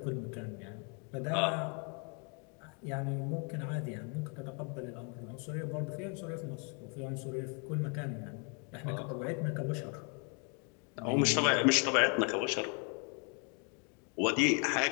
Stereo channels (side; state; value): right; quieter; 37.1 dB